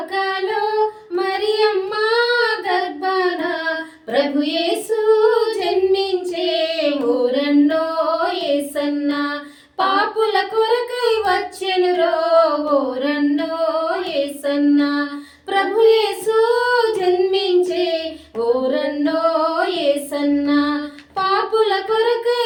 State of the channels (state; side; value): identical; both; correlation 1.00